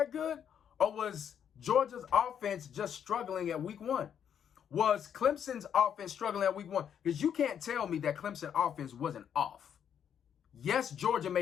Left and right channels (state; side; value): quieter; right; 8.6 dB